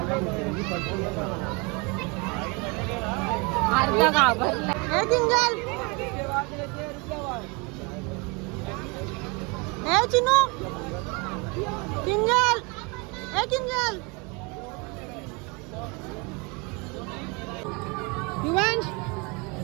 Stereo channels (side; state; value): left; quieter; 29.6 dB